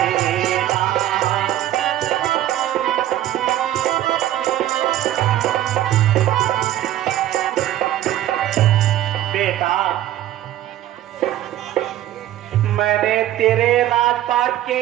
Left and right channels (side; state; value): left; quieter; 13.1 dB